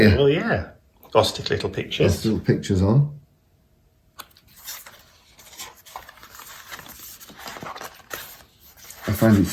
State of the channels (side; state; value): both; identical; correlation 1.00